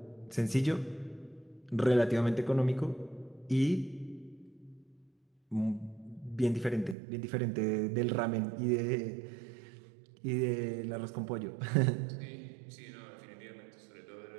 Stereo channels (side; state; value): left; drops out; at 7.0 s